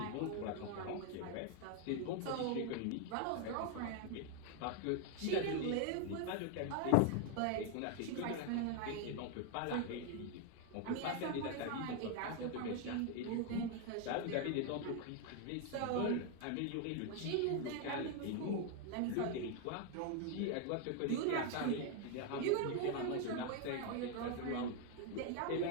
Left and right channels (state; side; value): different; both; correlation 0.01